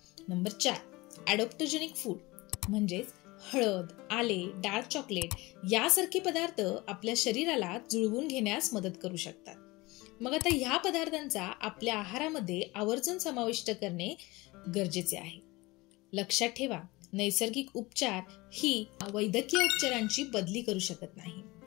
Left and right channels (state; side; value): quieter; right; 22.0 dB